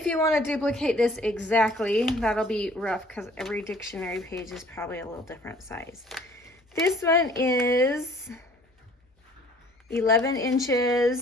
you want to duplicate this exactly, that'll be rough because every dictionary page is probably a little different size. This one is 11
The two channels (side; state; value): both; normal; correlation 0.55